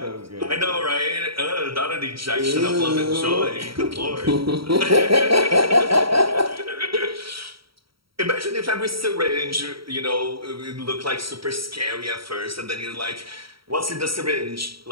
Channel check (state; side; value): late; left; 0.75 ms